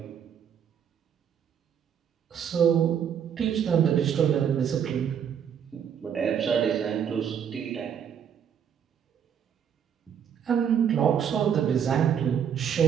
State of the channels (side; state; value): left; quieter; 8.3 dB